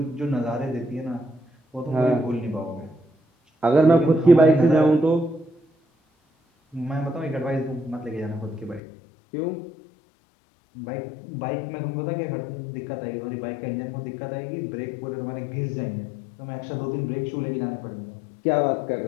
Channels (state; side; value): drops out; right; at 8.8 s